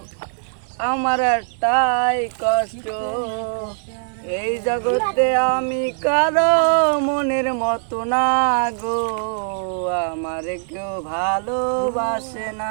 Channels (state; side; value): silent; left; 57 dB below the other